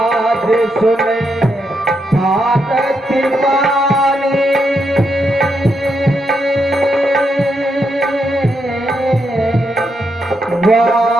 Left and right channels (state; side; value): normal; both; correlation 0.81